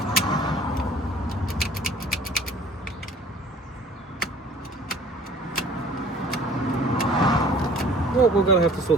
well, we're going to have to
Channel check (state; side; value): normal; both; correlation 0.50